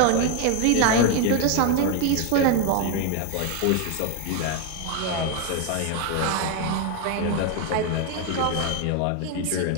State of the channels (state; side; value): different; both; correlation 0.02